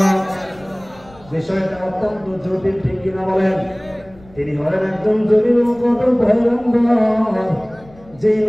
বিষয়টা অত্যন্ত জটিল, ঠিক কিনা বলেন? তিনি হলেন একজন জলিল কদর পয়গম্বর, যে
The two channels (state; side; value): noise; left; rumble, 24 dB below the sound